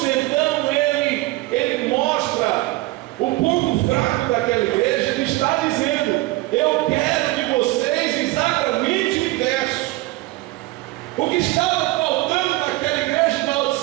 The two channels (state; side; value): quieter; left; 19.6 dB